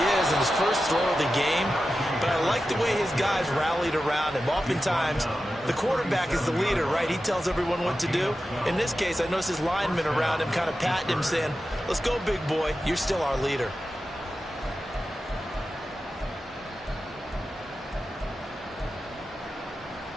is in his first throw of the game. But I like the way his guys rallied around him. Oftentimes, the quarterback is the leader, right? He tells everyone what to do. In this case, I noticed his linemen around him kind of patting him, saying, "Let's go, big boy. You're still our leader."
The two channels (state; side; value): normal; both; correlation 0.92